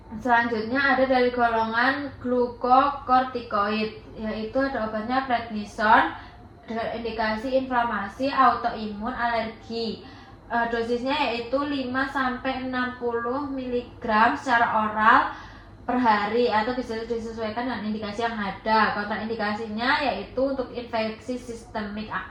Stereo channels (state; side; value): identical; both; correlation 1.00